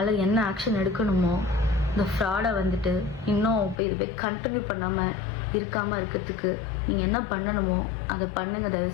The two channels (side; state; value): right; drops out; at 3.8 s